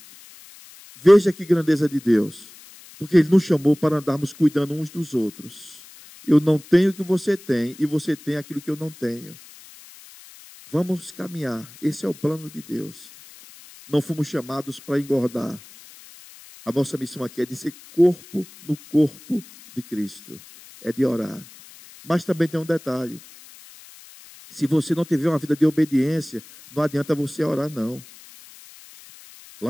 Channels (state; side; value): noise; left; hiss, 21 dB below the sound